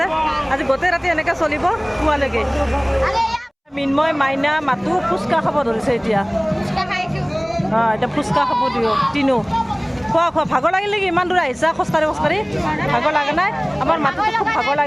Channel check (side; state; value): both; identical; correlation 1.00